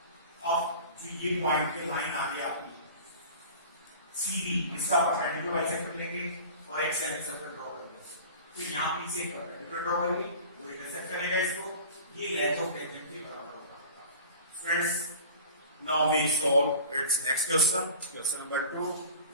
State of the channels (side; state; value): both; inverted; correlation -0.40